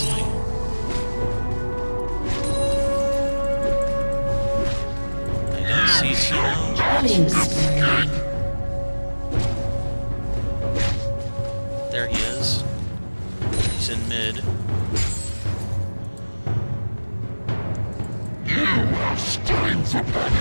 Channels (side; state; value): both; inverted; correlation -1.00